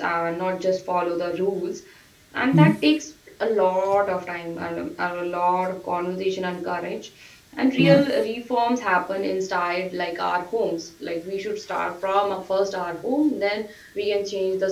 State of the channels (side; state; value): both; identical; correlation 1.00